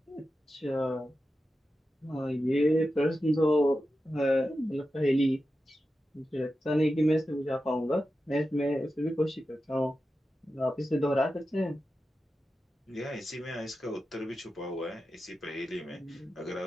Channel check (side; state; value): both; normal; correlation 0.91